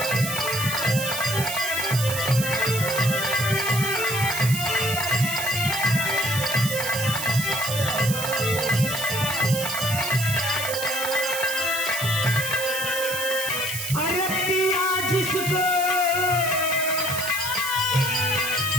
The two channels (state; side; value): noise; right; hiss, 5 dB below the sound